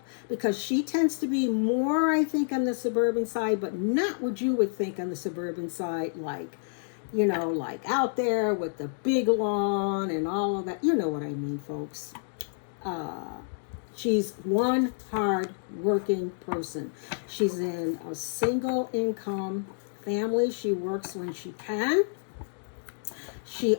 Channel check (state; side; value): silent; right; digital silence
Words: because she tends to be more, I think, on the suburban side, but not what you would think on the suburban side, like, you know, like out there with the big lawn and all of that. You know what I mean, folks. She's one hard working person. She's in a single income family. She works when she can. She